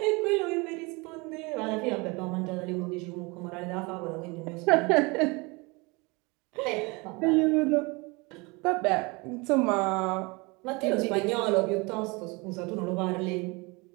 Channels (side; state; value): left; quieter; 26.9 dB